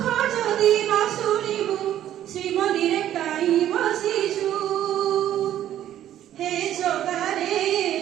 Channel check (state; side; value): quieter; left; 11.8 dB